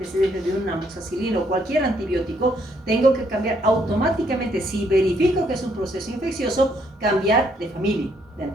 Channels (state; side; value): normal; both; correlation 0.70